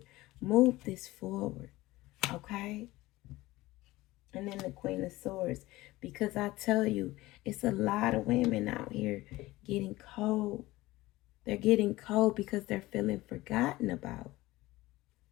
Move this forward. Okay? And then the Queen of Swords. Because I tell you, it's a lot of women out here getting cold. They're getting cold because they're feeling forgotten about.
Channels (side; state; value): right; quieter; 18.7 dB